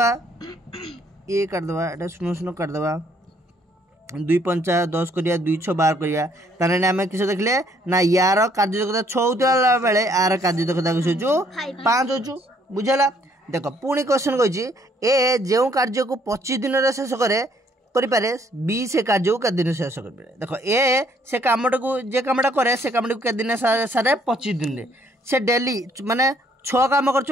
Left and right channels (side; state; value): both; normal; correlation 0.65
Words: ये काटदे एटा सुनो सुनो काटदे 2 5 10 करिया 2 6 12 करिया ताने आम किस देखले ना यार कार्यदक्षता 6 होता बेले यार कार्यदक्षता किस हो 5 हो बुझला। देख पुणी क्वेश्चन कही ए जो कार्य को 25 दिन में शेष करे बी से कार्य को केते दिन शेष कर देख ए से कामटा को जे कामटा करे से कामटा को केते दिन सारे 25 दिन में से डेली माने 6 काम